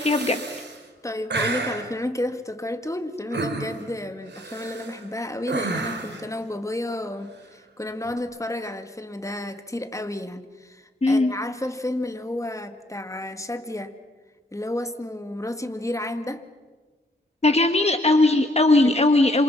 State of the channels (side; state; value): both; normal; correlation 0.67